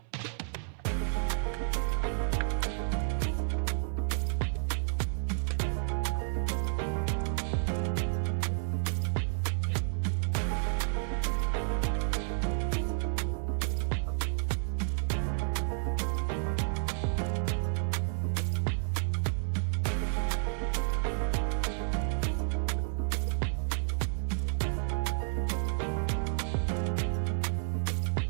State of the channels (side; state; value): left; silent; 57 dB below the other